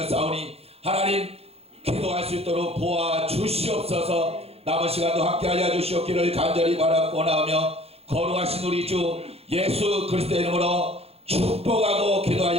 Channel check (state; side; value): late; left; 0.29 ms